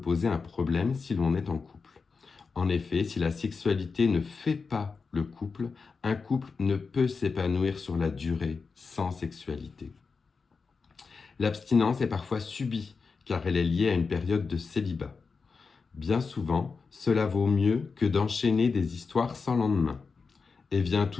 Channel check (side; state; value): right; quieter; 4.8 dB